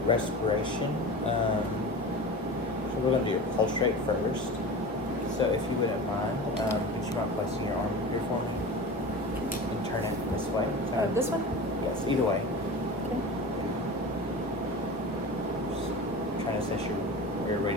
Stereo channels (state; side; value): normal; both; correlation 0.31